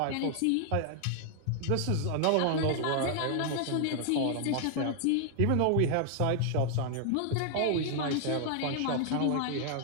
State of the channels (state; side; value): different; both; correlation 0.00